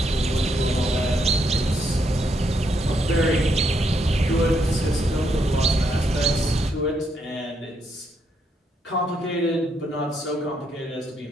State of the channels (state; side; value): normal; both; correlation 0.76